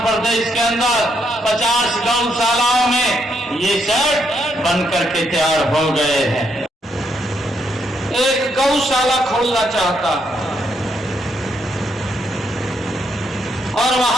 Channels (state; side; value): normal; both; correlation 0.76